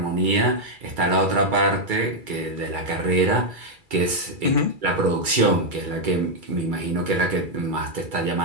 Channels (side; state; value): left; late; 2.3 ms